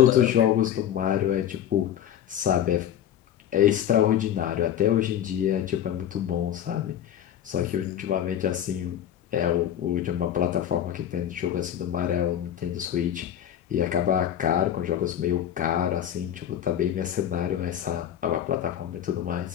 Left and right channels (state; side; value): quieter; right; 10.5 dB